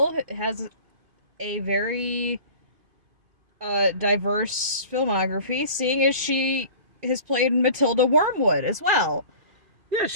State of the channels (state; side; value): late; left; 2.3 ms